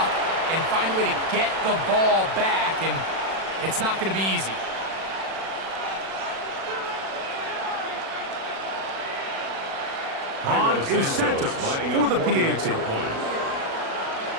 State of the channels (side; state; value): left; late; 36 ms